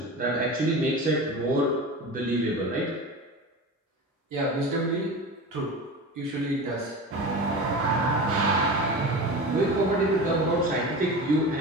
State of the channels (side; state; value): both; normal; correlation 0.30